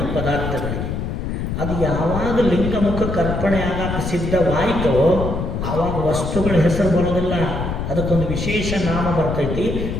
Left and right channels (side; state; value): left; noise; rumble, 3 dB below the sound